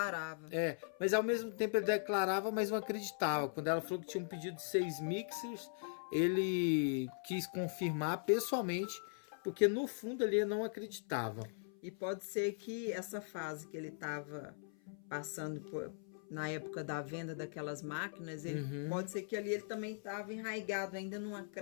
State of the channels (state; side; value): silent; right; 51 dB below the other